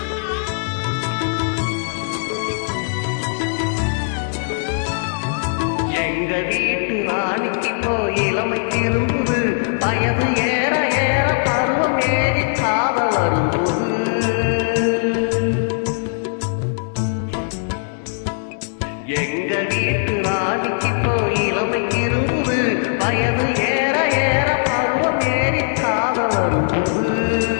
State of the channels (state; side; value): silent; right; 66 dB below the other